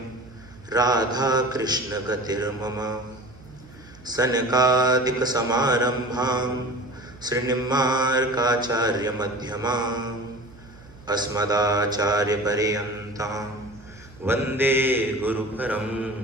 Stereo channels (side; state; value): right; noise; hum, 22 dB below the sound